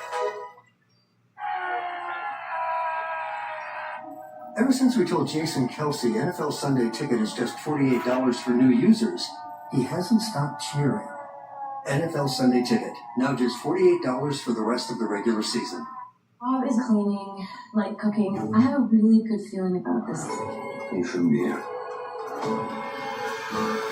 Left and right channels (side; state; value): both; identical; correlation 1.00